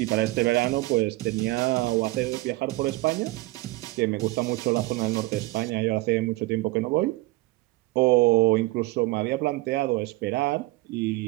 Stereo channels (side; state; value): left; quieter; 20.6 dB